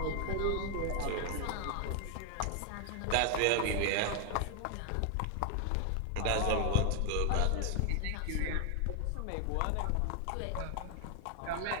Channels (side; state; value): both; different; correlation 0.00